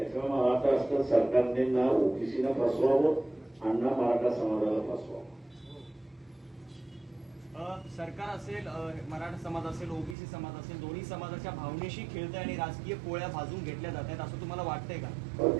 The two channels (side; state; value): left; drops out; at 10.2 s